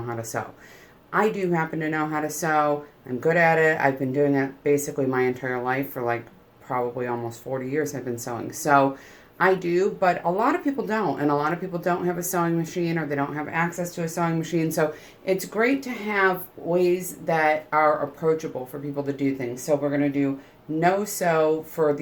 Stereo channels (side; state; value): both; identical; correlation 1.00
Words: how to sew. I do happen to know how to sew. I'm good at it. I've been doing it basically my entire life for like probably almost 40 years I've been sewing. So I do, but a lot of people don't. And a lot of people don't have a sewing machine or they don't have access to a sewing machine. So it's great to have ways that are approachable for people to do things. So we're going to do no sew for